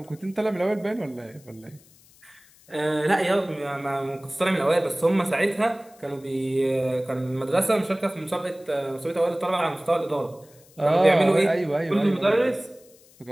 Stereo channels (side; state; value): left; noise; hiss, 27 dB below the sound